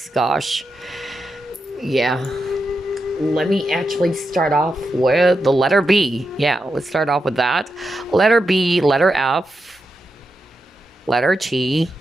Gosh. Yeah. Let me actually start off with the letter B. Yeah, let's start off with that. Letter B, letter F, letter T.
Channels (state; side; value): normal; both; correlation 0.87